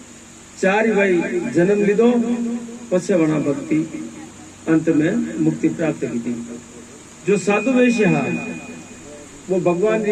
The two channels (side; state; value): both; identical; correlation 1.00